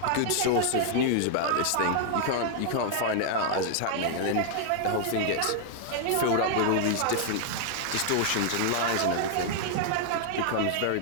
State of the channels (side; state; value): both; different; correlation 0.00